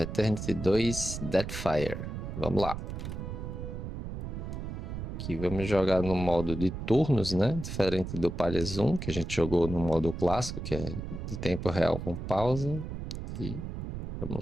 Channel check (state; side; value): noise; right; rumble, 6 dB below the sound